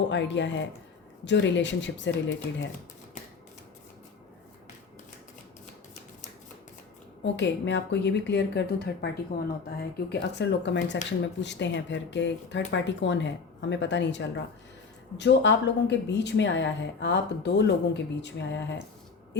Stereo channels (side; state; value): right; quieter; 5.0 dB